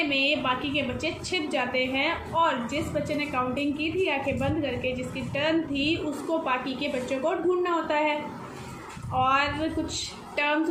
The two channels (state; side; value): identical; both; correlation 1.00